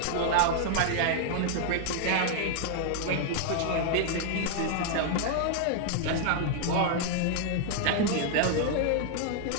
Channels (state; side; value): different; both; correlation -0.01